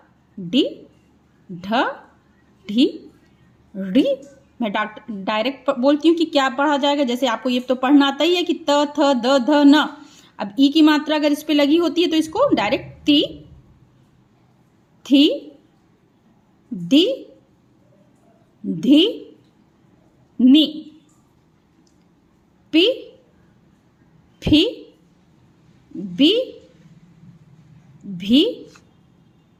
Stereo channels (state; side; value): identical; both; correlation 1.00